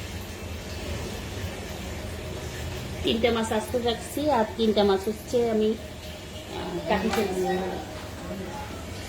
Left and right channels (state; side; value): identical; both; correlation 1.00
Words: 3টা মাছ আস্তে রাখছি আর 3টা মাছ হচ্ছে আমি কাটি ফেলছি।